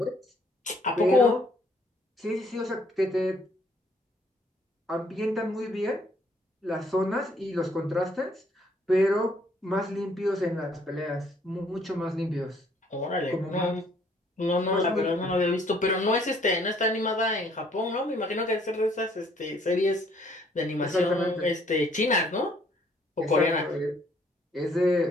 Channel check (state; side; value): normal; both; correlation 0.63